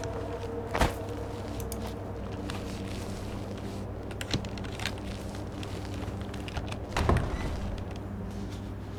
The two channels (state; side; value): identical; both; correlation 1.00